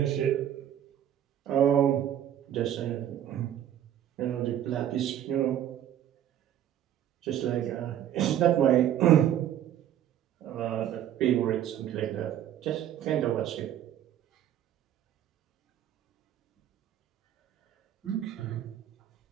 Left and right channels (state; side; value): quieter; left; 10.9 dB